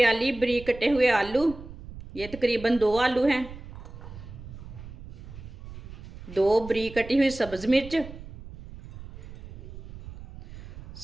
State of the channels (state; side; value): noise; right; rumble, 14 dB below the sound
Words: बारीक कटे हुए आलू, ये तकरीबन 2 आलू हैं। 2 बारीक कटी हुई सब्ज़ मिर्च।